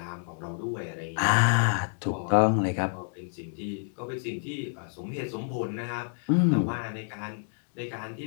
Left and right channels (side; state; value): right; silent; 59 dB below the other